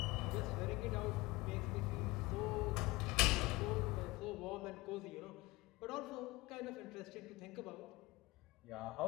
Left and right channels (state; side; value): quieter; right; 21.4 dB